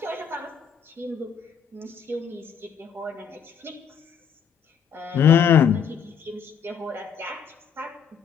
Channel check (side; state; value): right; quieter; 7.4 dB